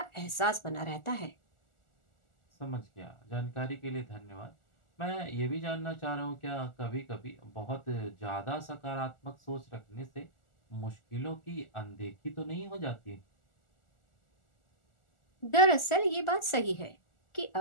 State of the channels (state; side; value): late; right; 1.4 ms